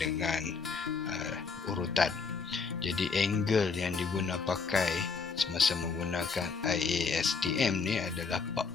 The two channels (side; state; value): right; quieter; 5.0 dB